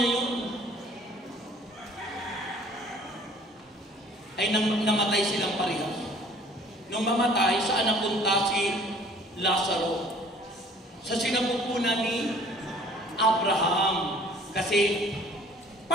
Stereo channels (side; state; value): both; normal; correlation 0.53